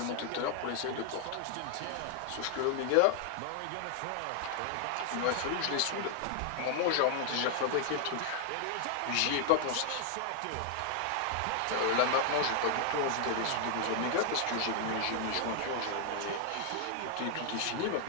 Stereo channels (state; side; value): different; both; correlation 0.00